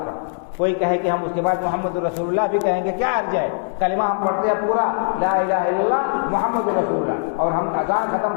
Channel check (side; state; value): right; silent; digital silence